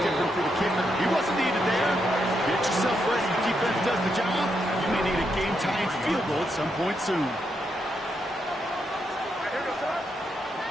for the kicker. He wasn't needed there. Get yourself ready. The defense does the job. You may need a game-tying field goal at some point soon.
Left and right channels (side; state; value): both; normal; correlation 0.81